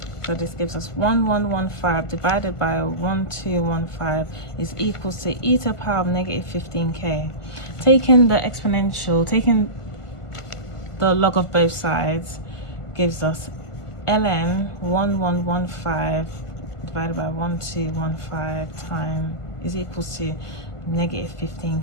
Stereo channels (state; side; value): late; right; 1.4 ms